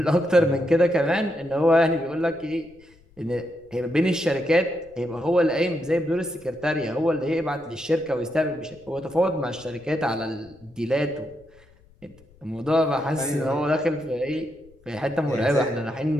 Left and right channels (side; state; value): left; noise; rumble, 28 dB below the sound